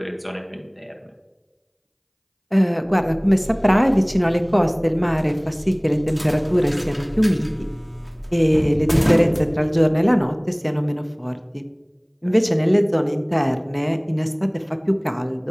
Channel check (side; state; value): both; identical; correlation 1.00